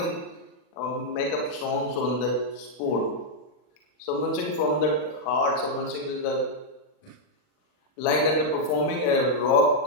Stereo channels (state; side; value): late; right; 39 ms